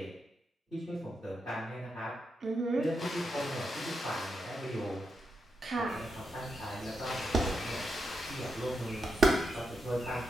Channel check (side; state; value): both; normal; correlation 0.85